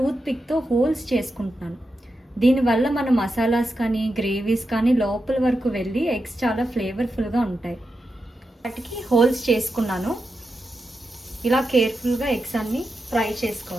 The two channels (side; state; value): both; normal; correlation 0.88